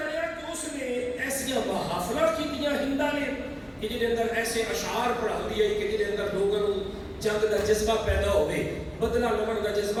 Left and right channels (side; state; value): both; identical; correlation 1.00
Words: رہا کہ اس نے ایسی محافلہ کی دیا ہندا نے کہ جن اندر ایسے اشعار پڑھا دیے کہ جن اندر لوگوں جنگ کا جذبہ پیدا ہوئے، بدلہ لمن کا